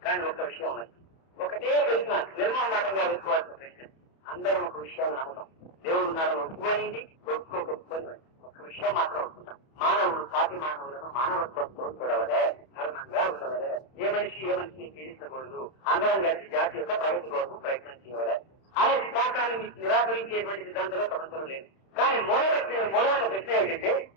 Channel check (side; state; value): right; late; 31 ms